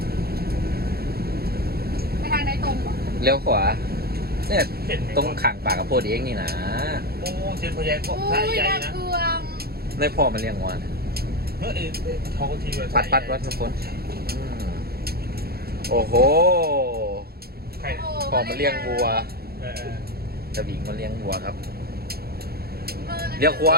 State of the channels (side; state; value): left; late; 0.45 ms